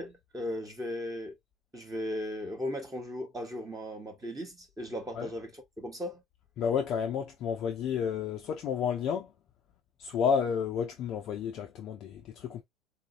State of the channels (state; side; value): quieter; right; 5.2 dB